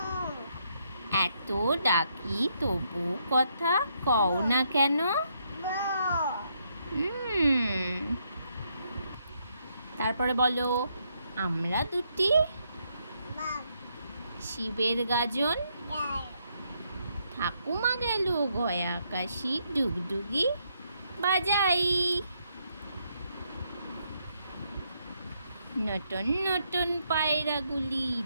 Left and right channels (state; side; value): inverted; both; correlation -0.75